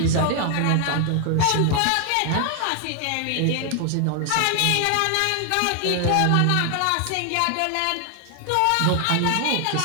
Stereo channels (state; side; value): different; both; correlation 0.00